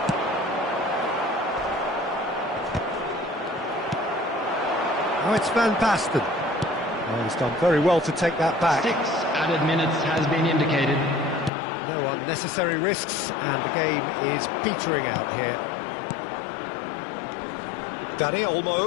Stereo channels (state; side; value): drops out; right; at 11.5 s